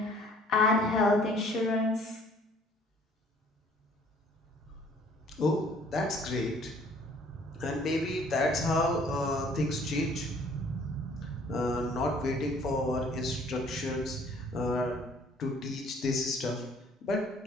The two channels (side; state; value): both; normal; correlation 0.57